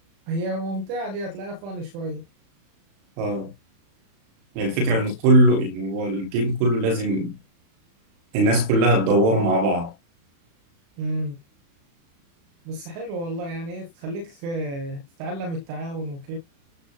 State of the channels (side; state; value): left; late; 36 ms